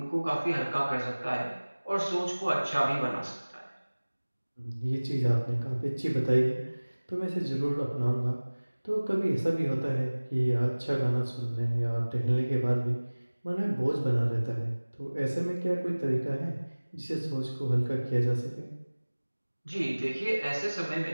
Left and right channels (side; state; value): both; inverted; correlation -1.00